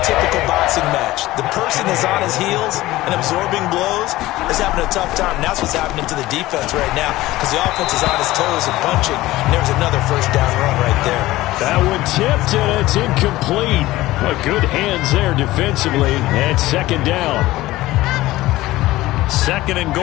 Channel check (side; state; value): right; quieter; 17.4 dB